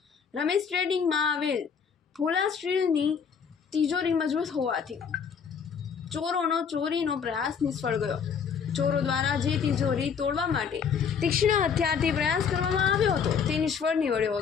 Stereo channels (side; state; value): right; quieter; 6.7 dB